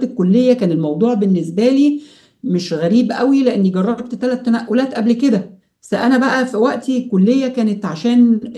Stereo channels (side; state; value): both; identical; correlation 1.00